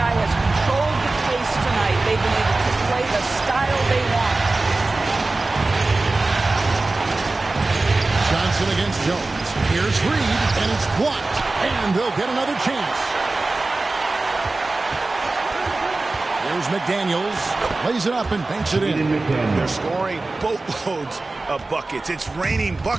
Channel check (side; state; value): left; quieter; 3.3 dB